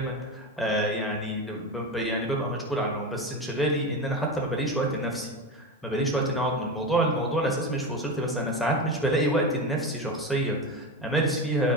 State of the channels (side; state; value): both; normal; correlation 0.20